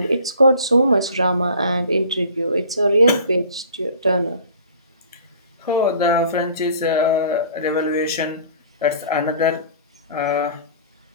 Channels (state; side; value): inverted; both; correlation -0.47